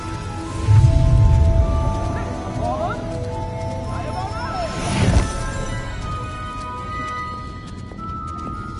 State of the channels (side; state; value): both; identical; correlation 1.00